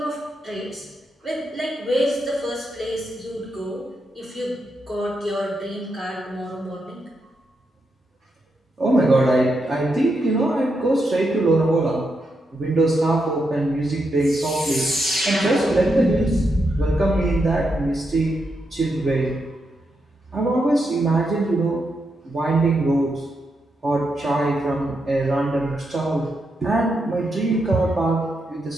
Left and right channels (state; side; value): normal; both; correlation 0.83